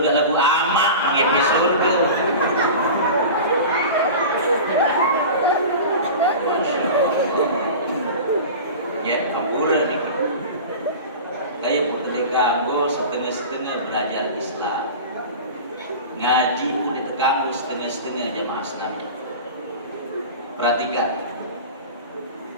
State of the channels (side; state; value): both; inverted; correlation -0.33